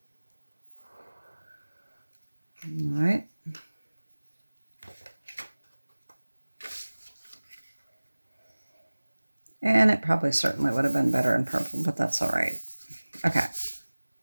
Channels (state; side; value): inverted; both; correlation -1.00